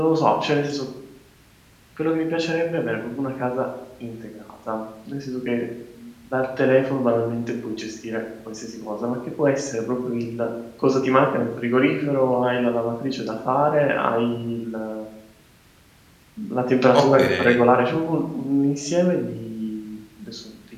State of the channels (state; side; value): identical; both; correlation 1.00